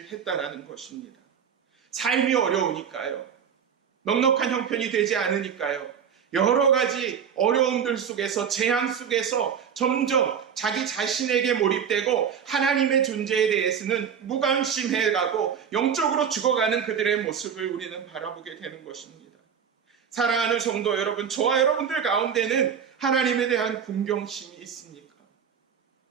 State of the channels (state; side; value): quieter; left; 7.6 dB